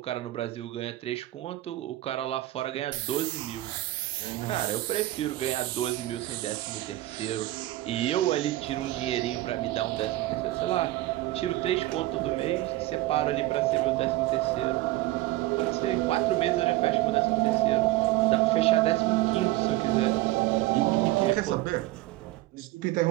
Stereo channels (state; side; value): quieter; left; 17.2 dB